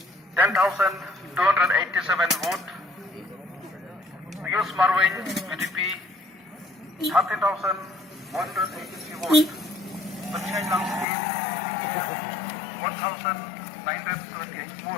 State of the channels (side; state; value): right; drops out; at 11.1 s